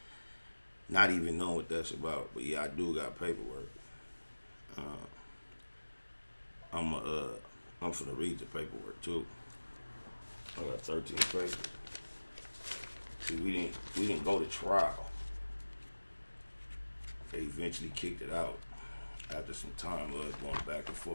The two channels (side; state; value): both; inverted; correlation -1.00